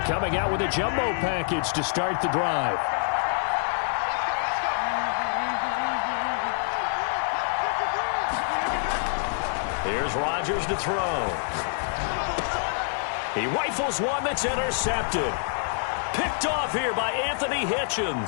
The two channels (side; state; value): right; silent; 61 dB below the other